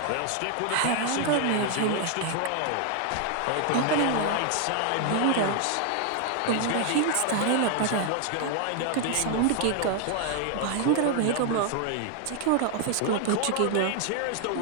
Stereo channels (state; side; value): different; both; correlation 0.00